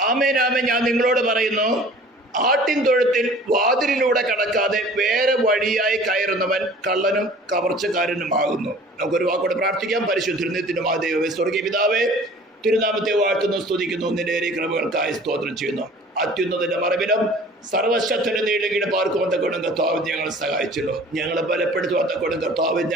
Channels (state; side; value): normal; both; correlation 0.48